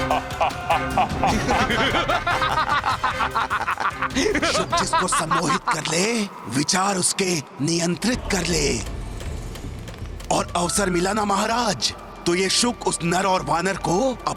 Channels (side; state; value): both; identical; correlation 1.00